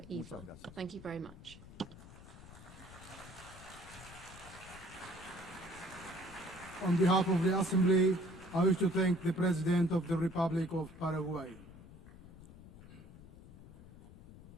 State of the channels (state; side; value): noise; left; rumble, 18 dB below the sound